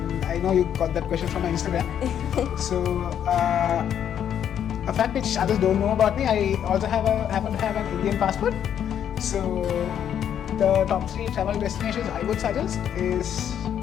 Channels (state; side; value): quieter; right; 9.4 dB